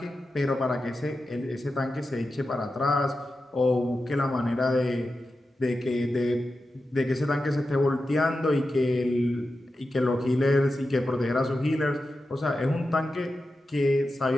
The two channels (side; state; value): both; normal; correlation 0.91